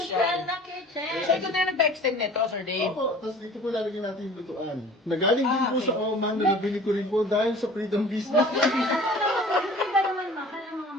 na kitchen. So, ito na nag-extend nito, Sir Dave. Opo, tapos dito po lalagyan natin yung lutuan. Nagaling din po okay. sa Oman, na nabili ko rin po dahil sa freedom business. Hindi ba naman mahal ang mga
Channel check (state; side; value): normal; both; correlation 0.45